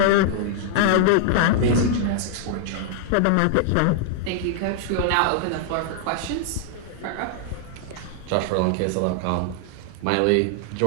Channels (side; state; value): both; different; correlation -0.01